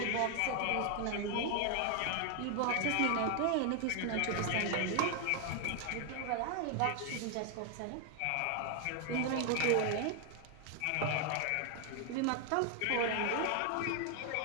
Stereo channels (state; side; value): different; both; correlation 0.00